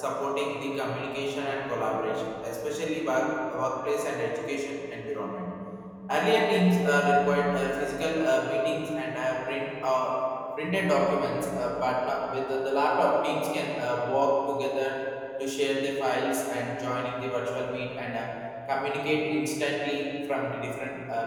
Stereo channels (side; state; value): both; identical; correlation 1.00